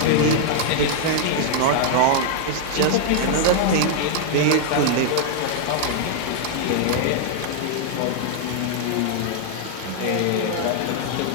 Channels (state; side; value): different; both; correlation -0.01